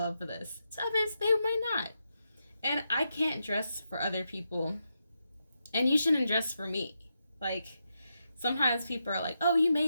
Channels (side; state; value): both; inverted; correlation -0.85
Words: this. To others, they might not. And I can't dress for other people. And you shouldn't dress for me. Like, sometimes people are like, oh, you